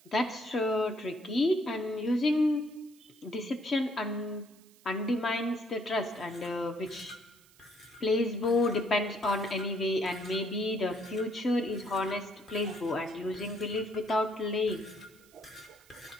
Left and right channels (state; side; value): noise; right; hiss, 27 dB below the sound